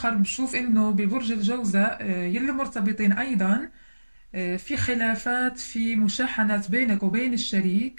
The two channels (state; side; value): inverted; both; correlation -1.00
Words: بشوف إنه ببرج الجوزاء يلي مرتبطين أيضا في خلافات، في مشاحنات بينك وبين